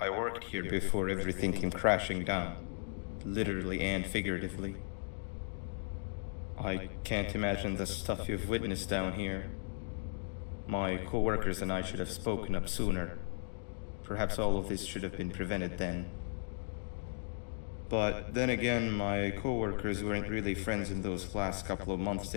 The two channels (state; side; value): silent; right; digital silence